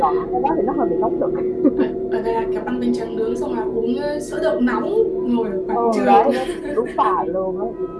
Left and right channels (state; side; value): identical; both; correlation 1.00